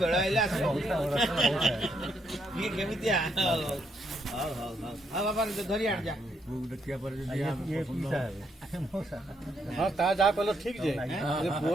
आइले आस केमी बाबा धरी आण जा हाँ ता जा कल ठीक जे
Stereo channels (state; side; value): normal; both; correlation 0.74